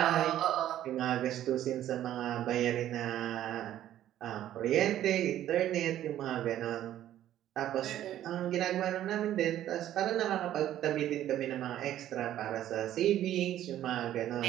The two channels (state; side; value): quieter; left; 12.2 dB